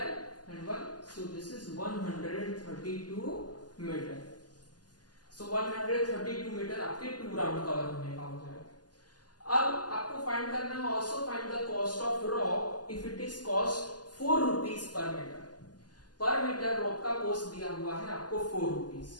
and 1, so this is 132 metre. So 132 metre आपके 2 राउंड कवर होने का हो जाएगा. अब आपको फाइंड करना है also find the cost of rock if it is cost 4 rupees per metre. Per metre rock का कॉस्ट दिया हुआ है आपको 4 rupees.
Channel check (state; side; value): late; right; 0.70 ms